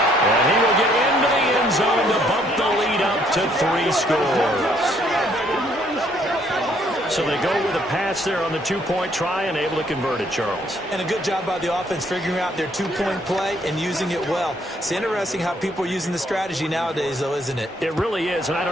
And he will get into the end zone to bump the lead up to 3 scores. So they go with a pass there on the 2-point try and able to convert it, Charles. And a good job by the offense figuring out their 2-point play and using it well. It's interesting how people are using the strategy nowadays, though, isn't it? It really is, and I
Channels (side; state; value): both; normal; correlation 0.67